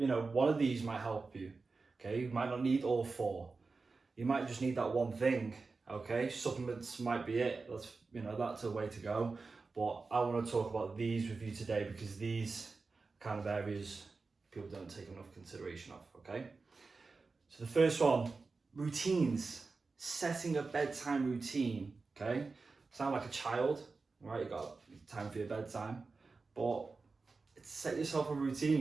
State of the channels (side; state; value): left; quieter; 4.1 dB